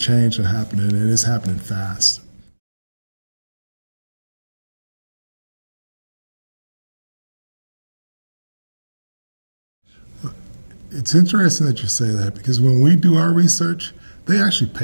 that's happening, and it's happening fast. It's interesting that you say that, because when we do our research, they actually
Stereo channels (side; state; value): both; inverted; correlation -1.00